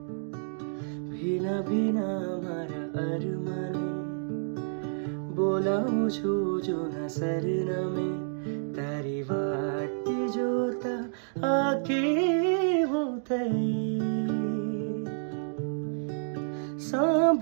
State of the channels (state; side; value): silent; left; digital silence